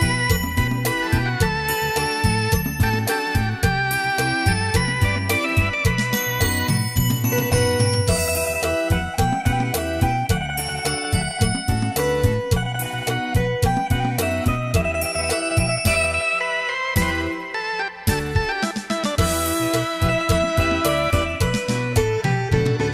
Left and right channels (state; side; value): identical; both; correlation 1.00